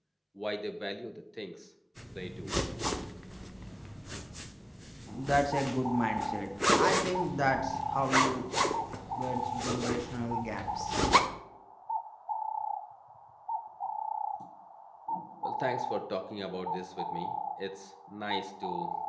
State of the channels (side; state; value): both; identical; correlation 1.00